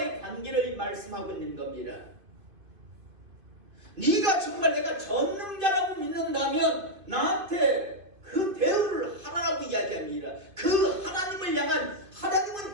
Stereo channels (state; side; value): late; left; 2.5 ms